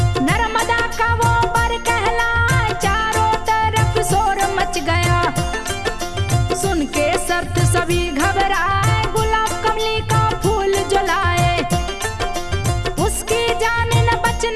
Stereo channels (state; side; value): identical; both; correlation 1.00